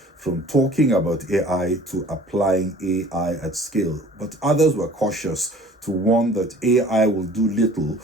talking about AI to applying AI at scale. But others were cautious to warn that AI will do little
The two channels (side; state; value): both; normal; correlation 0.49